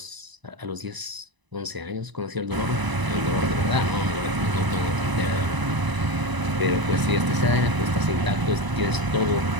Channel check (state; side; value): late; left; 1.0 ms